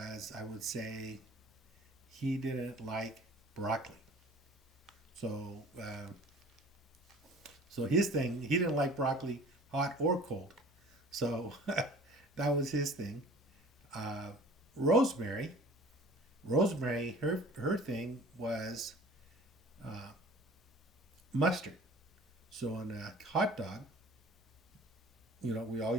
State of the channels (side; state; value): both; normal; correlation 0.47